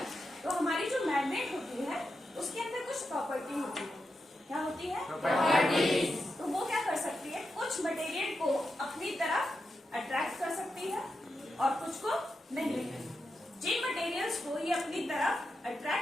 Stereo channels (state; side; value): normal; both; correlation 0.88